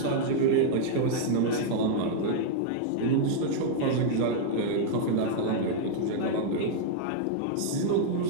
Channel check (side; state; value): both; different; correlation -0.01